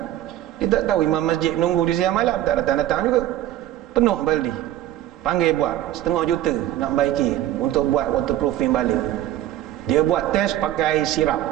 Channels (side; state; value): left; quieter; 13.3 dB